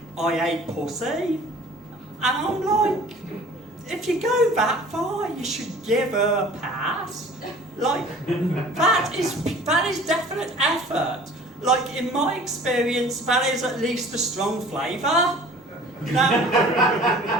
I ate pussy. And I'm like, if you go that far, you should give her a pass. Like, that is definite effort. Like, in my experience, that is at least a strong flavour. Now,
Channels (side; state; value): both; normal; correlation 0.47